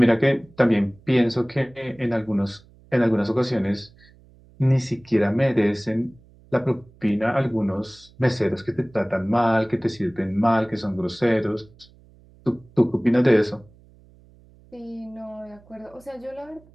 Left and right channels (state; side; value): noise; right; hum, 27 dB below the sound